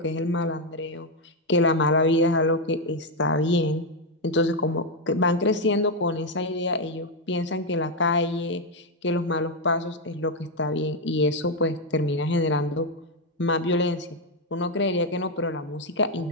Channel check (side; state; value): both; normal; correlation 0.04